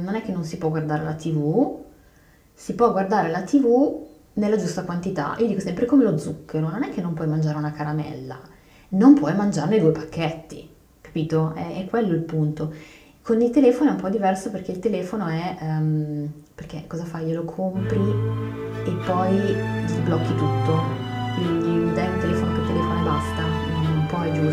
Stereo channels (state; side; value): identical; both; correlation 1.00